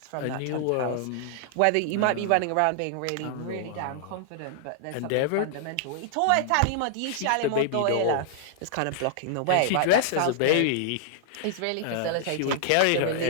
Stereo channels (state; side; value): different; both; correlation -0.01